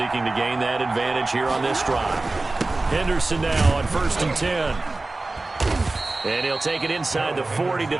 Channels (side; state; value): left; quieter; 3.2 dB